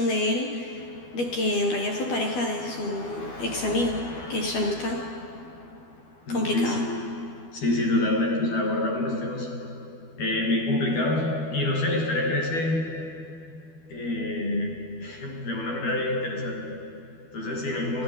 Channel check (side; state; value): right; late; 12 ms